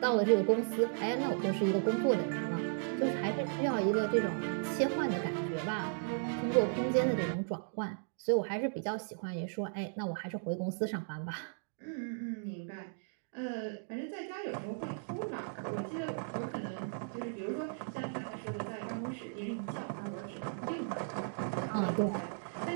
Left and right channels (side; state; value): left; silent; digital silence